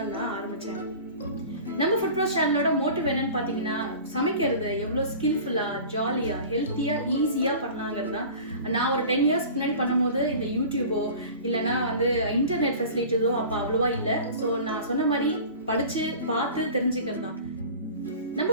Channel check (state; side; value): inverted; both; correlation -0.39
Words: நான் ஆரம்பித்தேன். நம்ம ஃபுட் ப்ரோஸ் சேனலோட மோட்டிவ் என்னன்னு பார்த்தீங்கன்னா, சமைக்கிறது எவ்வளோ ஸ்கில்ஃபுல்லாக, ஜாலியாக, ஹெல்த்தியாக, ஈஸியாக பண்ணலாங்கிறது தான். நான் ஒரு 10 இயர்ஸ் முன்னாடி பண்ணும்போது இந்த யூடியூபோ இல்லைனா இன்டர்நெட் ஃபெசிலிட்டிஸோ அப்போ அவ்வளோவா இல்லை. ஸோ நான் சொன்ன மாதிரி படித்து பார்த்து தெரிஞ்சுக்கிறது தான். நம்ம